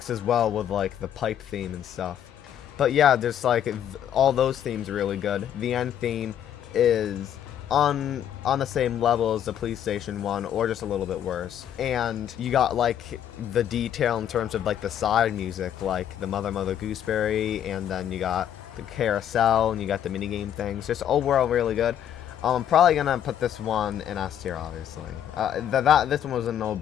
well with like the pipe theme and stuff. But yeah, there's like all those themes are really good. The end theme is on the same level as the police station one, or just a little bit worse. And you got like the detail in terms of like the side music, like the Mother Gooseberry, and then you got the carousel, and you got the minigame things. Just overall really good. I'm probably gonna put this one in S tier, obviously. This one was a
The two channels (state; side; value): quieter; right; 10.0 dB